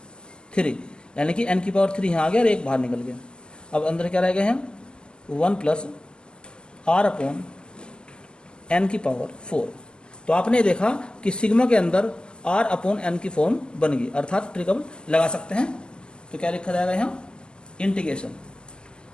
3, यानी कि n की पावर 3 यहाँ आ गया और एक बाहर निकल गया। अब अंदर क्या रह गए हैं, 1 प्लस r अपॉन n की पावर 4। तो आपने देखा कि सिग्मा के अंदर r अपॉन n की फॉर्म बन गई, अर्थात ट्रिक अब लगा सकते हैं। तो क्या लिखा जाएगा यहाँ, इंटीग्रेशन।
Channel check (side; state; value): right; late; 0.047 ms